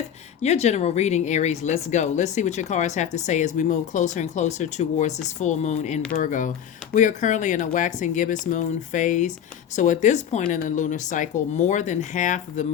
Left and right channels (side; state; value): right; quieter; 9.1 dB